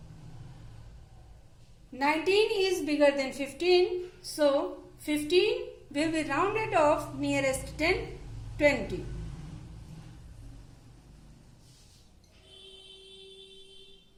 19 is bigger than 15, so 15 will be rounded off nearest 10, 20.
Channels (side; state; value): both; identical; correlation 1.00